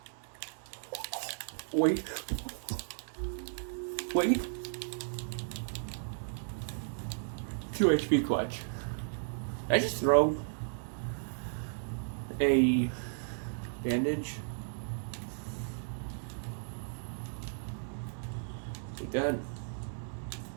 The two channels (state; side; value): silent; left; digital silence